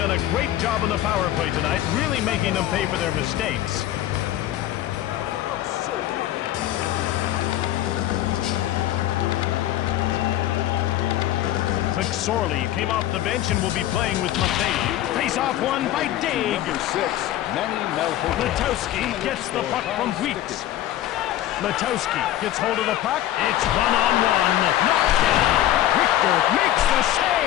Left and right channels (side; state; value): right; quieter; 13.3 dB